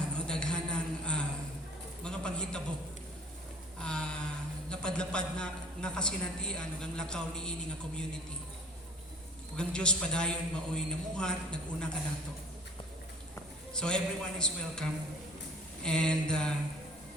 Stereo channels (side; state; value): both; normal; correlation 0.48